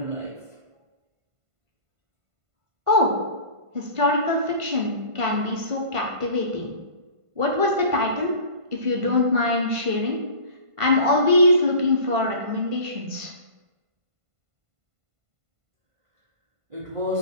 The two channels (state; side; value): late; left; 1.5 ms